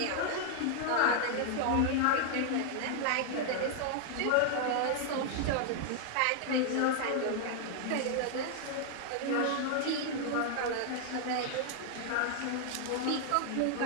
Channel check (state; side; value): different; both; correlation 0.00